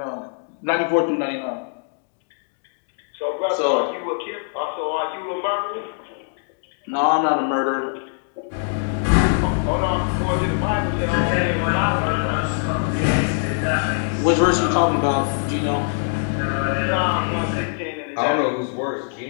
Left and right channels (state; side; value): silent; right; digital silence